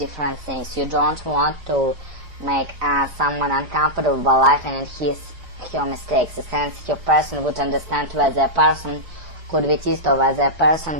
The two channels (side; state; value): left; late; 4.9 ms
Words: things. You don't want to make someone uncomfortable by laughing at your mistakes. A sensitive person would understand whether a person could be teased or whether a